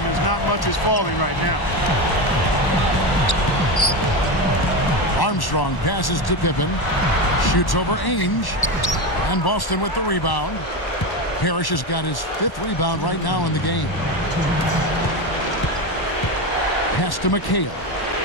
as not much is falling right now. Armstrong passes to Pippen. Shoots over Ainge. And Boston with the rebound. Parrish has got his 5th rebound right now in the game. Pass to McHale.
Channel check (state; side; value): late; right; 1.1 ms